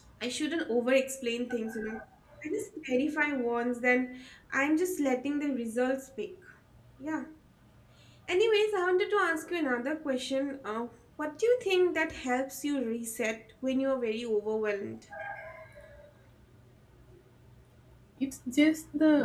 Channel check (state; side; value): identical; both; correlation 1.00